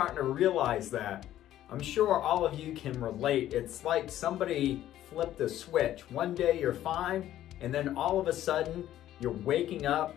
to realize that. I'm sure all of you can relate. It's like somebody flipped a switch. One day you're fine and then all of a sudden you're waking up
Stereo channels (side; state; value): right; quieter; 12.7 dB